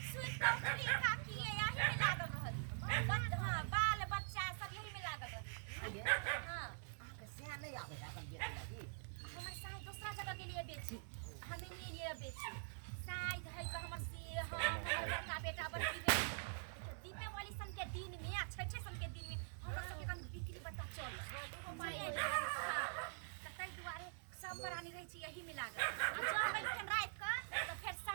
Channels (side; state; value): left; silent; digital silence